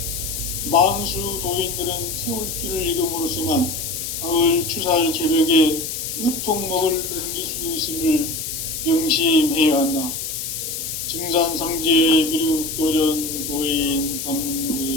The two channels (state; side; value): noise; left; hiss, 5 dB below the sound